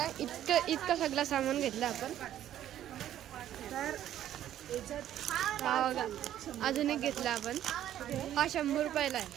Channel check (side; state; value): left; quieter; 11.7 dB